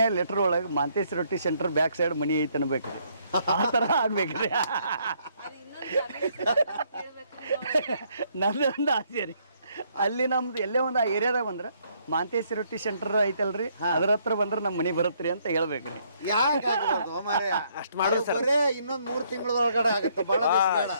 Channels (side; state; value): both; inverted; correlation -0.69